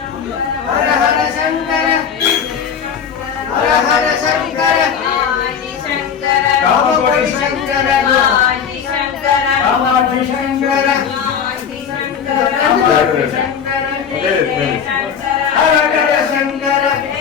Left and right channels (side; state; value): right; quieter; 7.3 dB